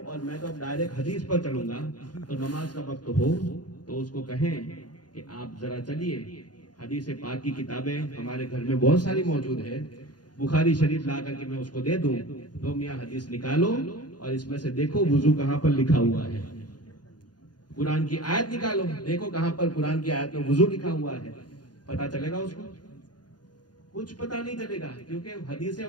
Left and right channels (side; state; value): right; late; 0.70 ms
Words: اور میں تو اب ڈائریکٹ حدیث پر چلوں گا, تو نماز کا وقت ہو تو اس کو کہیں کہ آپ ذرا چلیے, حدیث پاک کی کتابیں ہمارے گھر میں بہت ساری موجود ہے, بخاری شریف لا کر کے میں اس کو دے دوں، تو میاں حدیث نکالو اور اس میں سے دیکھو وضو کہاں پر لکھا ہوا ہے، قرآن کی آیت نکالو، دیکھو کہاں پر قرآن کی آیت میں وضو لکھا ہوا ہے، پتا چلے گا اس کو؟ کچھ پتا نہیں چلے گا، کیونکہ حدیثیں